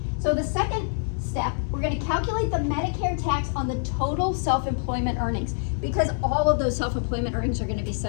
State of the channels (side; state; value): right; silent; digital silence